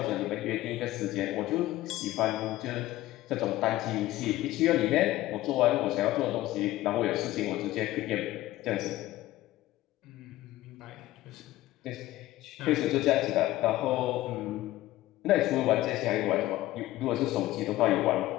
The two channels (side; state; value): right; quieter; 16.2 dB